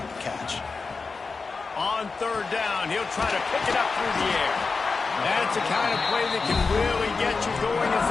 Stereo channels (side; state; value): right; quieter; 4.4 dB